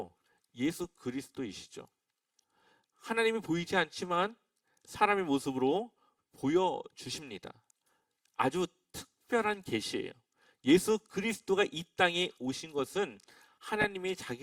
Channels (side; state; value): both; identical; correlation 1.00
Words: 예수 그리스도이시죠. 하나님이 보이지 않지만 사람의 모습으로 보여주십니다. 아주 특별한 계시예요. 예수 그리스도가 이 땅에 오신 것은 하나님이